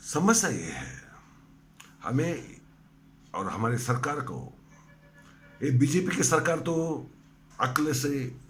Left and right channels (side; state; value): both; identical; correlation 1.00